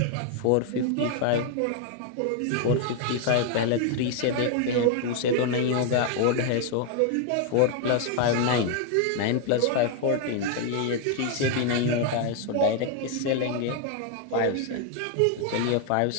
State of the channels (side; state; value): both; different; correlation 0.00